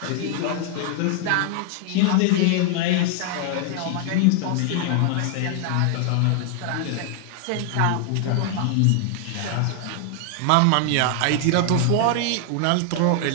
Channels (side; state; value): both; different; correlation 0.00